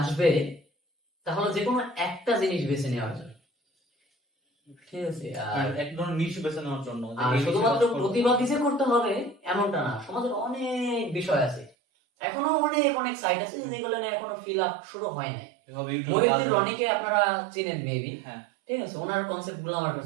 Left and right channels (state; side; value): drops out; left; at 11.7 s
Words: আসবে, তাহলে যে কোনো একটা জিনিস বেছে নেওয়ার জন্য, ঠিক আছে। আর এক ধরনের নিশ বেছে নেওয়ার জন্য, যে আর এই শুধুমাত্র বিষয়ে কাজ করবো। প্রতিবাদই যে করতে হবে এমনটা না, সমাজের অনেক বিষয় আছে, এখনো অনেক অনেক সাইট আছে যেগুলো নিয়ে এখনো ফিল আপ শুরু হয় নাই। এভাবে ইউটিউবে মহিউদ্দিন কাজ- রনিকে আপনারা চিনেন মেবি, হ্যাঁ, ঠিক আছে, ওনার কনসেপ্ট গুলো আমার